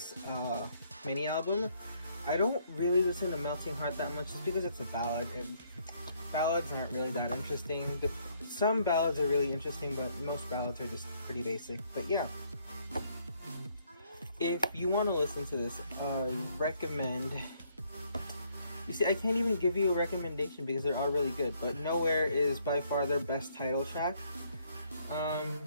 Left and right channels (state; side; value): inverted; both; correlation -0.69